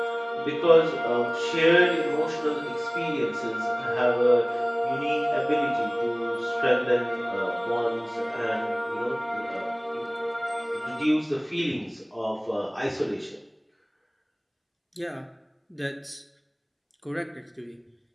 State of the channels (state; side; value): identical; both; correlation 1.00